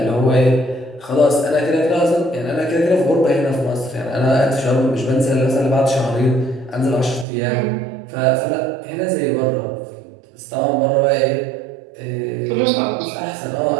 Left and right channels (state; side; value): drops out; left; at 7.2 s